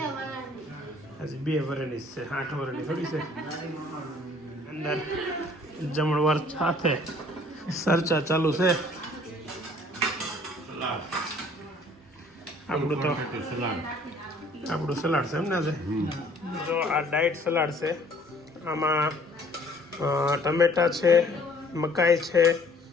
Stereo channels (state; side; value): normal; both; correlation 0.56